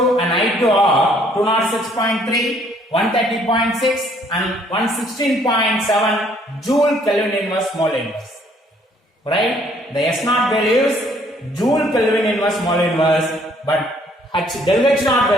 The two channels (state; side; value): normal; both; correlation 0.63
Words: and I2 are 206.3, 130.6 and 116.7 joule Kelvin inverse mole inverse. Right? The S naught values joule Kelvin inverse mole inverse, but del H naught